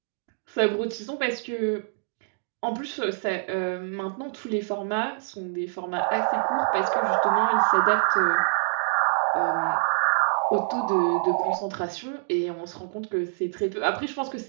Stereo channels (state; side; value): silent; left; digital silence